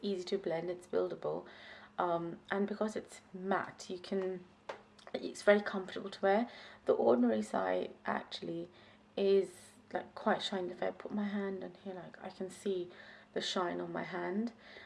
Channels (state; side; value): identical; both; correlation 1.00